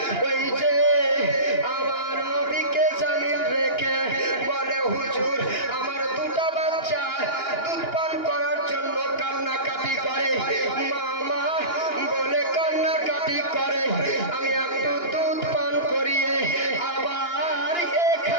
ওই যে আমার নবীকে জামিন রেখে বলে হুজুর আমার দুটা বাচ্চা দুধ পান করার জন্য কান্নাকাটি করে, মামা বলে কান্নাকাটি করে, আমি একটু দুধ পান করিয়ে আবার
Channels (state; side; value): late; right; 2.8 ms